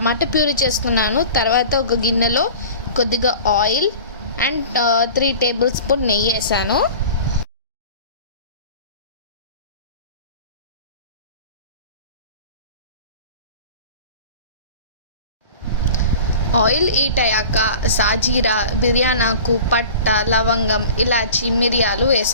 ప్యూరీ చేసుకున్నాను. తర్వాత ఒక గిన్నెలో కొద్దిగా ఆయిల్ అండ్ 3 టేబుల్ స్పూన్ నెయ్యి వేసాను. ఆయిల్ హీట్ అయ్యాక సాజీరా, బిర్యానాకు, పట్ట, లవంగం, ఇలాచి, మిరియాలు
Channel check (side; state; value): both; inverted; correlation -0.40